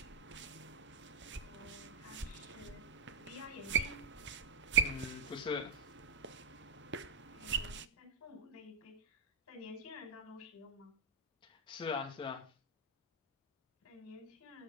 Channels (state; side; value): quieter; left; 4.2 dB